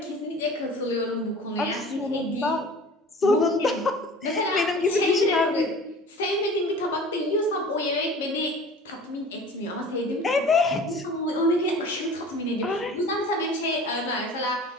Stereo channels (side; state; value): both; normal; correlation 0.42